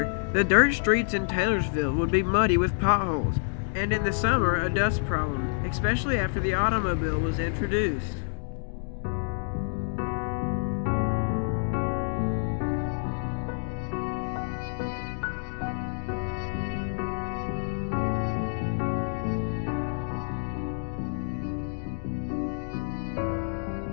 the dirt streets in Taylorsville would be muddy with potholes, and in the summer a dust problem, especially after the automobile was introduced.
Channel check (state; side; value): silent; right; 59 dB below the other